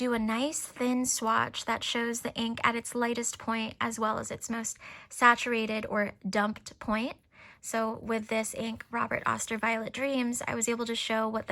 a nice thin swatch that shows the ink at its lightest point as well as its most saturated or dumped point. So with this ink, Robert Oster Violet Dreams, I was able to show what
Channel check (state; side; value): identical; both; correlation 1.00